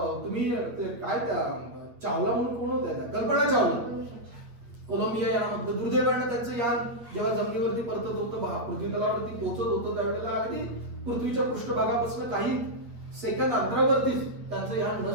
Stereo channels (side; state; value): left; late; 8.7 ms